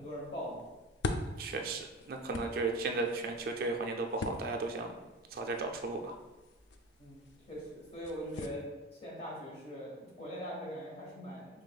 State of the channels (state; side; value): normal; both; correlation 0.29